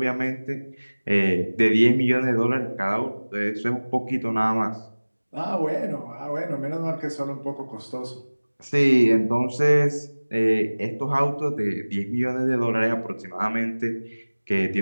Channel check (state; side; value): inverted; both; correlation -1.00